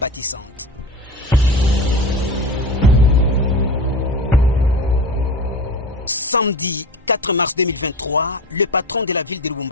Samedi 4 mars 2023, le patron de la ville de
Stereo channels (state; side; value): normal; both; correlation 0.30